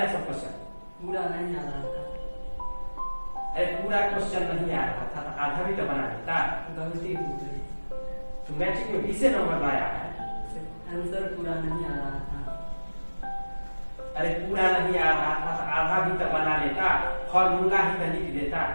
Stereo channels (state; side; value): inverted; both; correlation -1.00